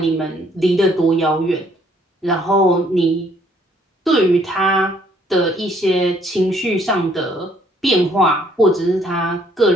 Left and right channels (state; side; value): normal; both; correlation 0.65